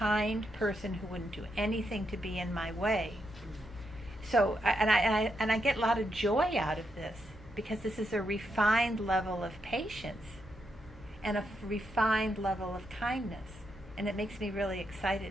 person who wouldn't do anything to be in my way. So, I get a lot of joy out of this because this is a refined level of patience and a refined level of kindness. And it makes me really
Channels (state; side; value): normal; both; correlation 0.82